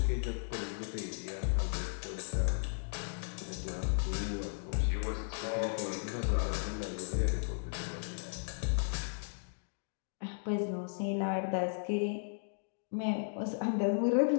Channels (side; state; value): right; silent; digital silence